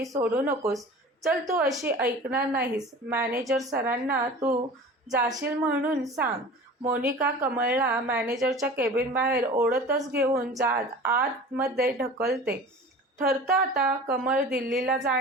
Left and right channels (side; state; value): both; normal; correlation 0.39